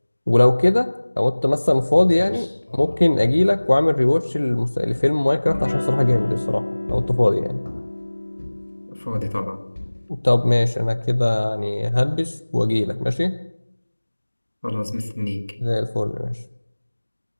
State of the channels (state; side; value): inverted; both; correlation -1.00